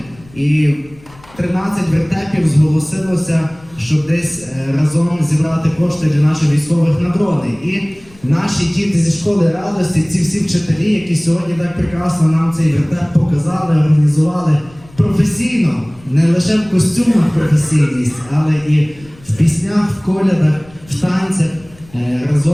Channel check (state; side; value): noise; left; rumble, 25 dB below the sound